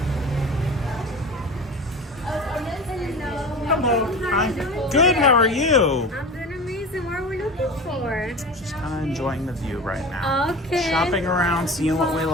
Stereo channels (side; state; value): both; normal; correlation 0.33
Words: Hello. Hi. Good, how are you? I'm doing amazing. What are we looking for? Just kind of enjoying the view right now. Okay. Shopping around, seeing what we